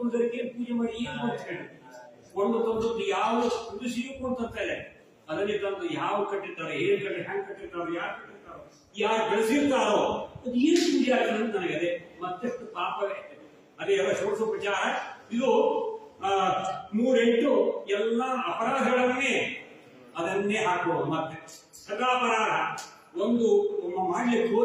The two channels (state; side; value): identical; both; correlation 1.00